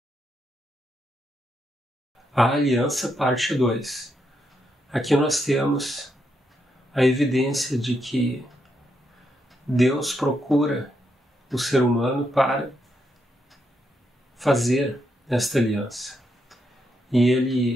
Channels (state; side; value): normal; both; correlation 0.80